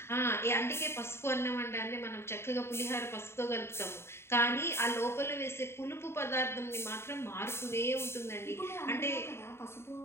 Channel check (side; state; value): right; late; 0.12 ms